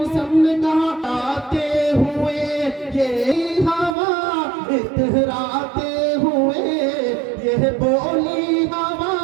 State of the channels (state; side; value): drops out; left; at 4.0 s